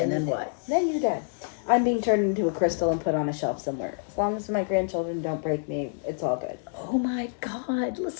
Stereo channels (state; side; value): silent; right; digital silence